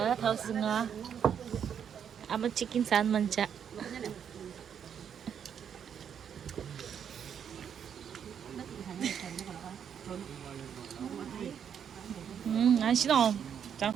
타우스가 아마 치킨 산 만자. 안 싫어. 자.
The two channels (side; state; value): left; quieter; 8.1 dB